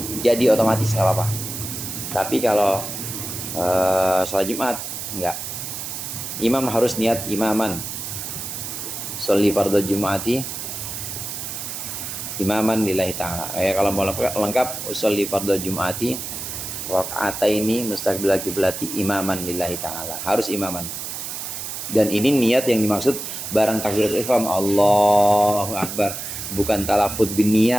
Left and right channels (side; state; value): right; noise; hiss, 6 dB below the sound